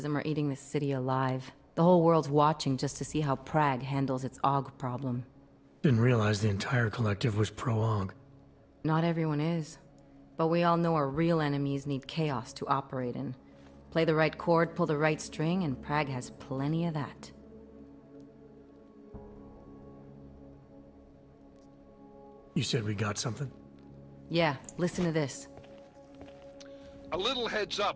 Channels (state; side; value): identical; both; correlation 1.00